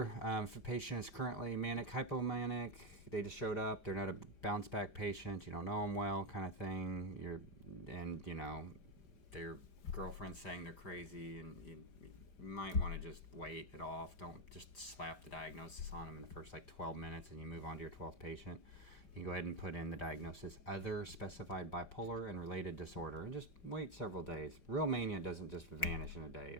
if a patient is currently manic, hypomanic, they just showed up, they're not a bounce back patient, you don't know them well, kind of thing, their girlfriend's saying they're crazy, and you might want to just wait it off. Don't just slap the diagnosis on them in the first 12 minutes and you move on to your 12th patient. You can go ahead and put in the diagnosis, other specified bipolar and related disorder, and just wait several days. Real mania doesn't just vanish in a day.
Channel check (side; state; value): right; late; 4.9 ms